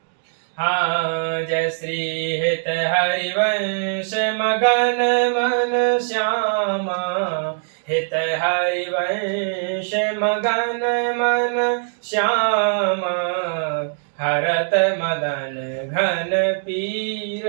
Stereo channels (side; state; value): left; silent; digital silence